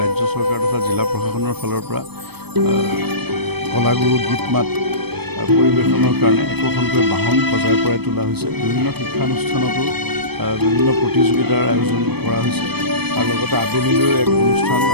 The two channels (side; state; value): left; late; 0.97 ms